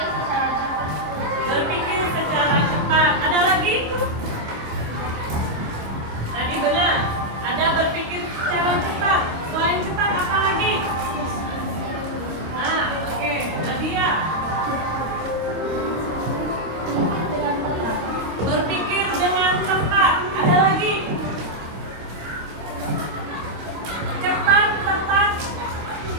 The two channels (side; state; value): left; late; 25 ms